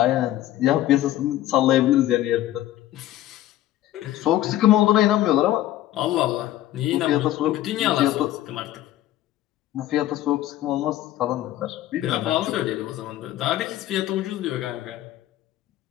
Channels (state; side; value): quieter; right; 13.9 dB